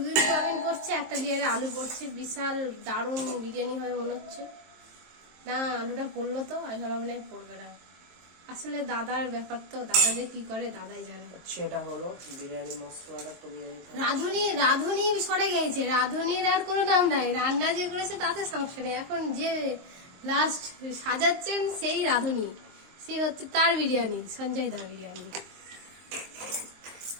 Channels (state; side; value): late; left; 23 ms